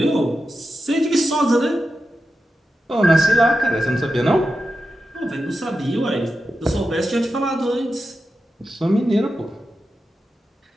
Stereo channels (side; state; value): both; normal; correlation 0.90